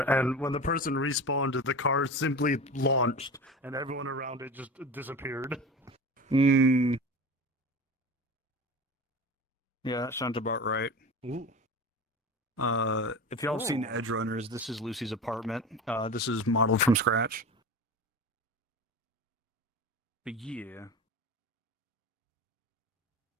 and when the person respawned, the car simply launched, and everyone around it just disappeared. Hmm. Yeah, that sounds about right. Ooh. If y'all have seen Edge Runners, this is Lucy's apartment. This is modeled from scratch. But yeah.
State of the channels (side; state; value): both; normal; correlation 0.31